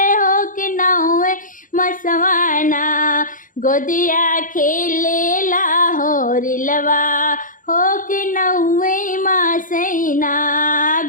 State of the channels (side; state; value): right; late; 0.39 ms